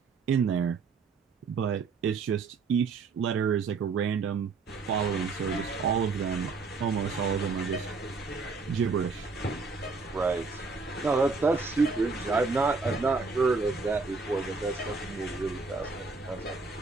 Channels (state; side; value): quieter; left; 4.5 dB